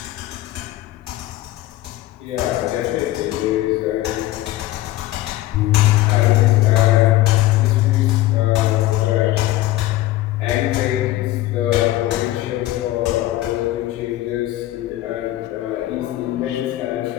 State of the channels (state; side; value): quieter; right; 15.9 dB